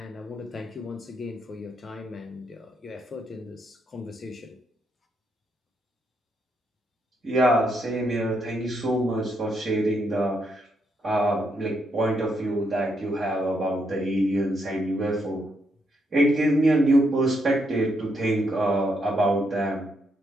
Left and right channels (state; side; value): normal; both; correlation 0.78